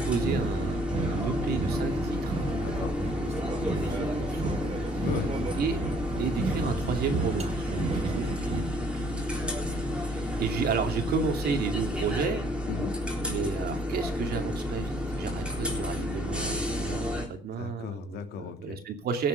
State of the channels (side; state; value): both; normal; correlation 0.61